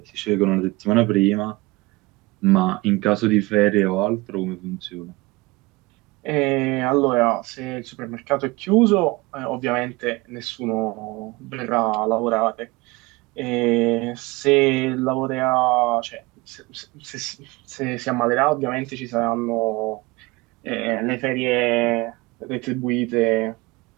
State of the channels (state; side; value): quieter; left; 22.9 dB